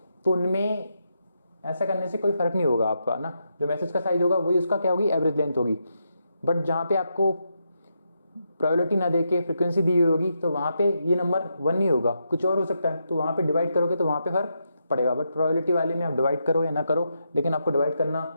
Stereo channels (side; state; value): both; inverted; correlation -0.83